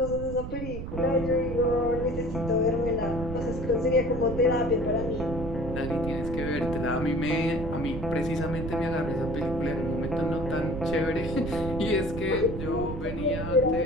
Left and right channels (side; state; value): right; noise; rumble, 7 dB below the sound